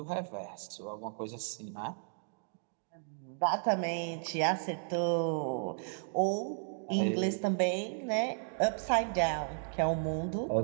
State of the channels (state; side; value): silent; left; digital silence